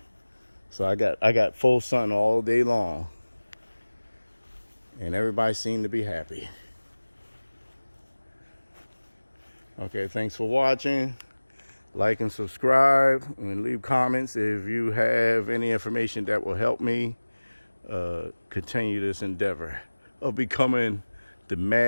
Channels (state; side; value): inverted; both; correlation -1.00